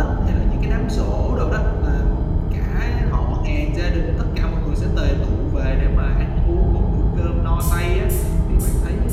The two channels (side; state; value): both; identical; correlation 1.00